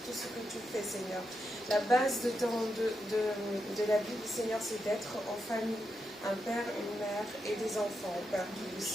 tout ce que tu fais, Seigneur. La base de la Bible, Seigneur, c'est d'être en famille, un père, une mère et des enfants, Père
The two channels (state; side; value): normal; both; correlation 0.85